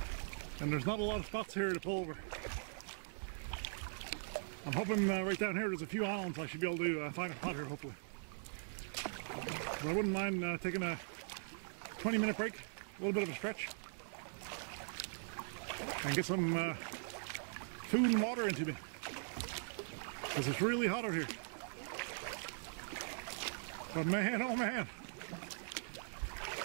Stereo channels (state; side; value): silent; left; 50 dB below the other